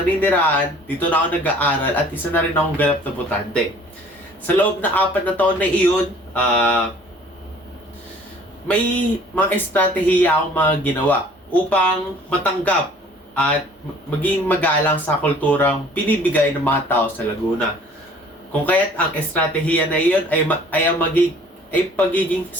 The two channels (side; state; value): both; normal; correlation 0.52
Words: dito na ako nag-aaral at isa na rin akong ganap na botante. Sa loob na 4 na taon na iyon, may mga estratehiya akong mga ginawa upang matanggap at maging magalang sa kulturang pinibigay ng mga tao sa Laguna. Kung kaya't ang estratehiya na iyon ay pagiging